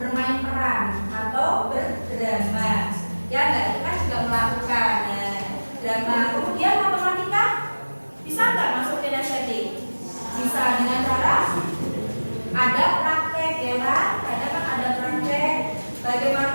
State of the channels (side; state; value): both; inverted; correlation -1.00